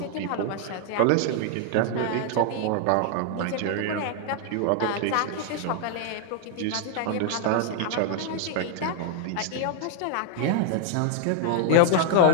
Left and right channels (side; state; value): both; different; correlation 0.00